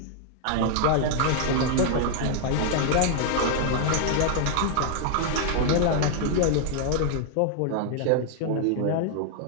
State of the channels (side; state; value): both; different; correlation 0.00